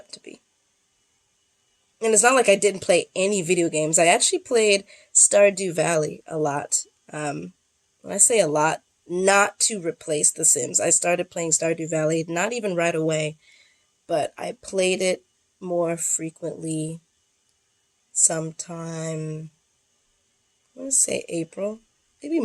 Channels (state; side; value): identical; both; correlation 1.00